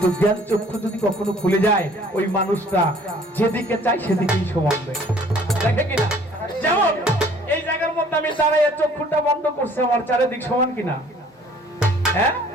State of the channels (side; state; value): both; normal; correlation 0.55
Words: জ্ঞান চক্ষু যদি কখনো খুলে যায় ওই মানুষটা যেদিকে চাই সেদিকেই সমান দেখে কিনা। যেমন এই জায়গার মধ্যে আমি দাঁড়াইয়া চক্ষুটা বন্ধ করছি, আমার চারিদিক সমান কিনা? হ্যাঁ,